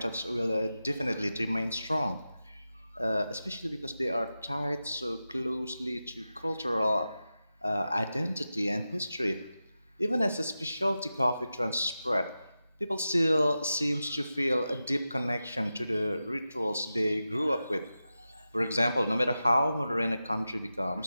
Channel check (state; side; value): inverted; both; correlation -0.92